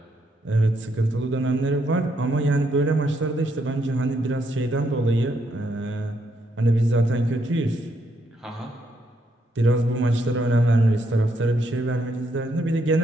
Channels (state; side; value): normal; both; correlation 0.75